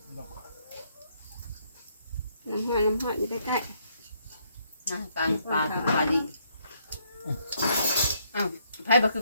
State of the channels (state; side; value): inverted; both; correlation -0.71